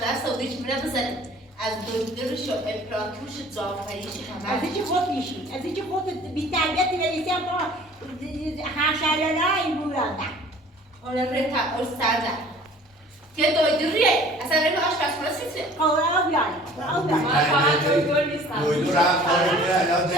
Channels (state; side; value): normal; both; correlation 0.49